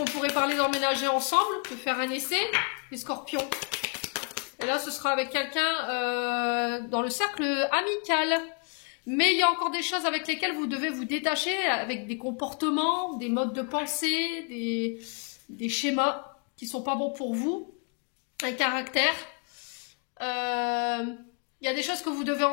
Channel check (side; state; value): right; quieter; 38.7 dB